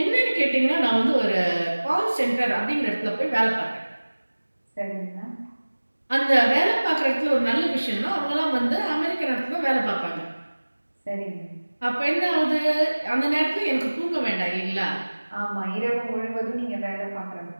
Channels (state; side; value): inverted; both; correlation -1.00